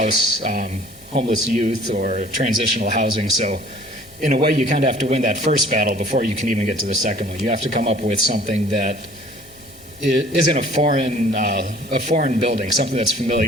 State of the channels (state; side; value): normal; both; correlation 0.51